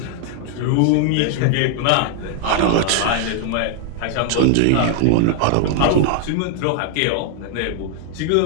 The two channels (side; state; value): both; different; correlation 0.00